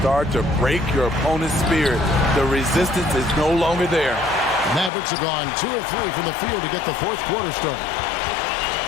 to break your opponent's spirit. The resistance is no longer there. Mavericks have gone 2 of 3 from the field to get the fourth quarter started.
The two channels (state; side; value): drops out; right; at 4.9 s